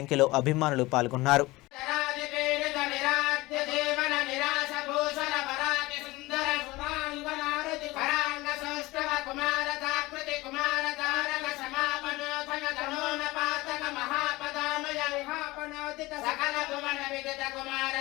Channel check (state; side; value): quieter; right; 20.5 dB